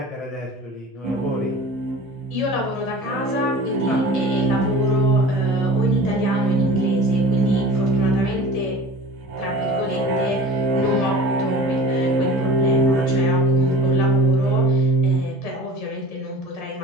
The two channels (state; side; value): normal; both; correlation 0.40